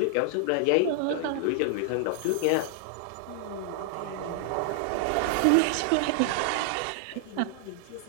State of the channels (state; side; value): different; both; correlation 0.00